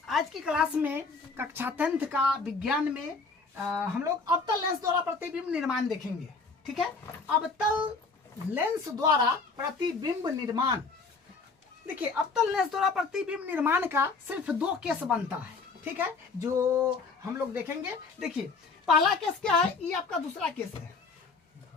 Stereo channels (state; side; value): quieter; right; 4.3 dB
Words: आज की क्लास में कक्षा 10th का विज्ञान में हम लोग अवतल लेंस द्वारा प्रतिबिंब निर्माण देखेंगे। ठीक है, अवतल लेंस द्वारा प्रतिबिंब निर्माण। देखिए, अवतल लेंस द्वारा प्रतिबिंब निर्माण का सिर्फ 2 केस बनता है। ठीक है, जो हम लोग देखेंगे। देखिए, पहला केस क्या है, ये आपका दूसरा केस है,